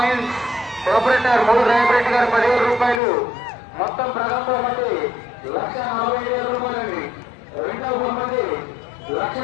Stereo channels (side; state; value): right; drops out; at 3.0 s